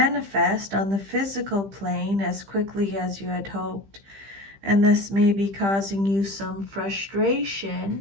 on the physical plane as quickly as you had hoped. And this may be causing you some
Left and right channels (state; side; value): late; left; 15 ms